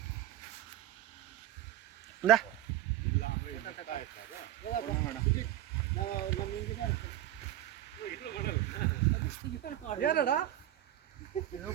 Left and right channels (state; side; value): quieter; left; 13.3 dB